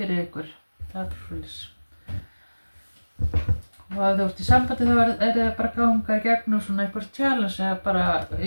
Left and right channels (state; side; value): inverted; both; correlation -1.00